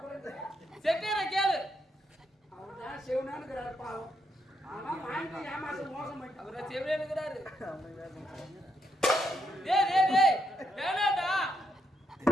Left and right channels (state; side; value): normal; both; correlation 0.79